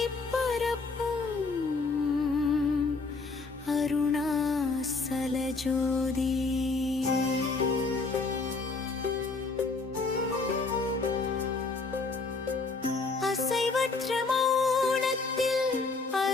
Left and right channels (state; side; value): quieter; right; 4.0 dB